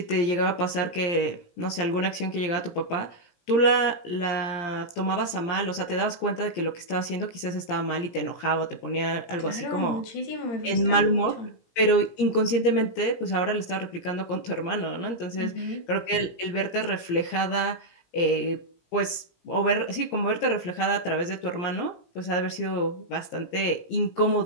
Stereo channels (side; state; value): right; late; 17 ms